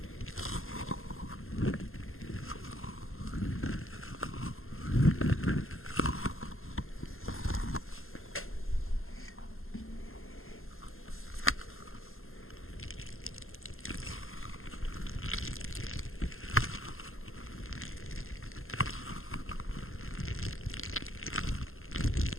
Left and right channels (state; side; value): late; right; 0.61 ms